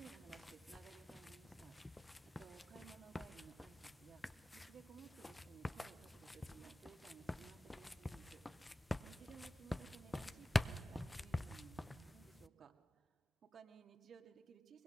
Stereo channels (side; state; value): both; normal; correlation 0.96